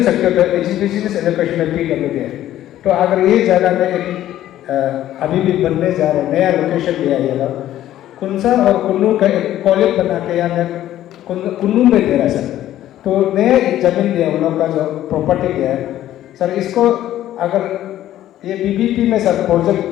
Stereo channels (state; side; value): quieter; right; 12.9 dB